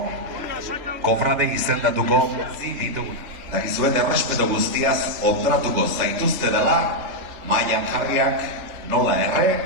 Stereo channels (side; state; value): left; late; 3.4 ms